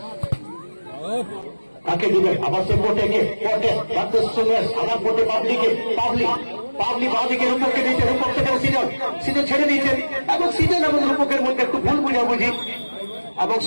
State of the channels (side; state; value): both; inverted; correlation -1.00